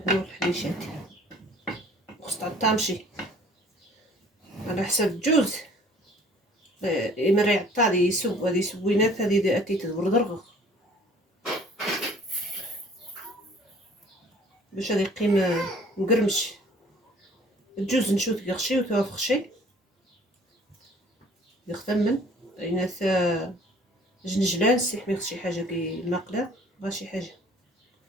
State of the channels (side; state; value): both; normal; correlation 0.53